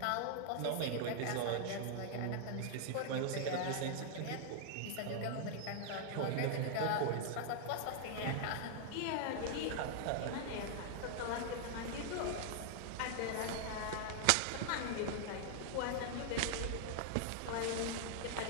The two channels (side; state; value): both; different; correlation 0.00